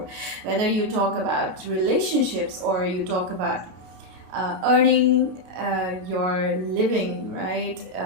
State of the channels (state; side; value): late; left; 33 ms